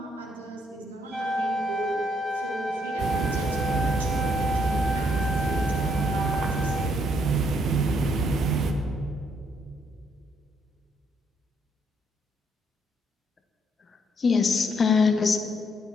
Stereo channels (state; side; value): normal; both; correlation 0.72